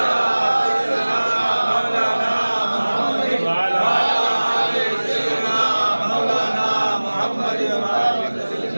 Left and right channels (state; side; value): inverted; both; correlation -1.00